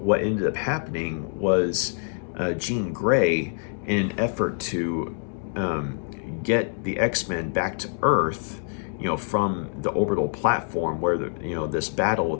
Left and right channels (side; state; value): right; silent; 61 dB below the other